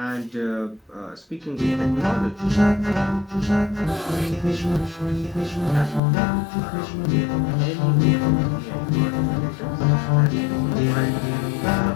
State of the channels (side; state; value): right; drops out; at 6.0 s